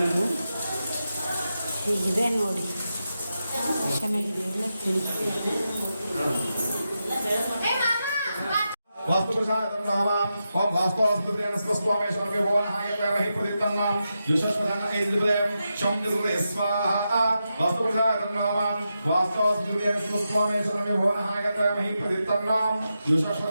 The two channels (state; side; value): inverted; both; correlation -0.88